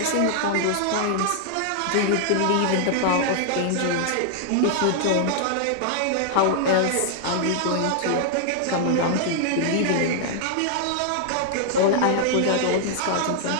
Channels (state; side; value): different; both; correlation -0.01